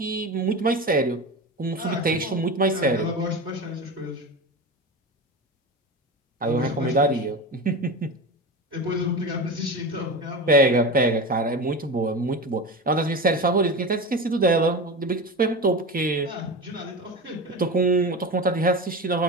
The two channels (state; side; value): normal; both; correlation 0.26